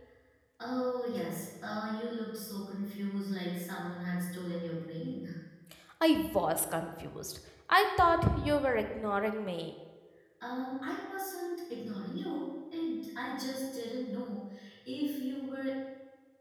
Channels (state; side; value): identical; both; correlation 1.00